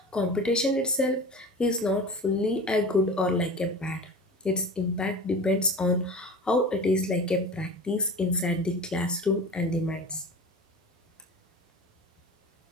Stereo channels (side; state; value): both; normal; correlation 0.34